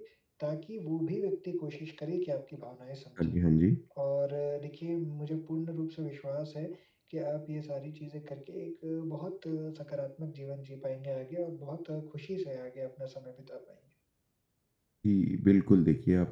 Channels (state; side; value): identical; both; correlation 1.00